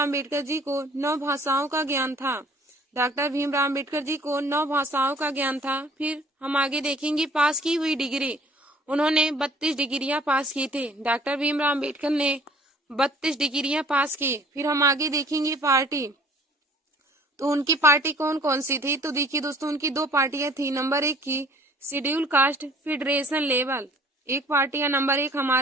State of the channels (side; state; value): both; normal; correlation 0.53